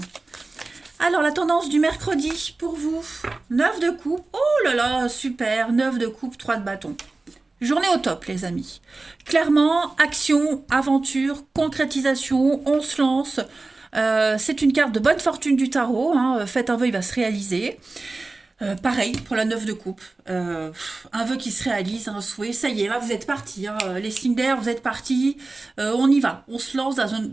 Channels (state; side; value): quieter; left; 3.4 dB